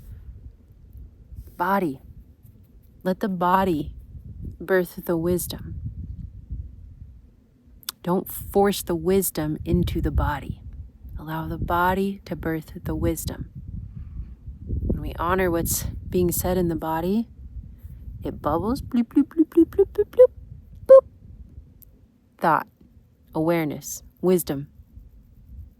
Body. Let the body birth the wisdom. Don't force the wisdom into the body. Allow the body to birth the wisdom. When we honor what's being said in the body, it bubbles, bloop, bloop, bloop, bloop, bloop, bloop, bloop, boop. Thought, awareness, wisdom.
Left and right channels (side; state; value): both; identical; correlation 1.00